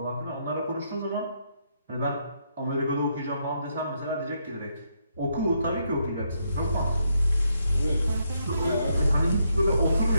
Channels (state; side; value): inverted; both; correlation -0.77